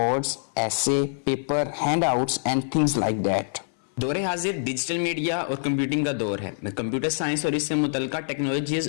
essay, paper, handouts and things like that। दौरे हाजिर digital media और computing का दौर है। Computer science और इससे मुतल्लिका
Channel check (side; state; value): right; silent; 60 dB below the other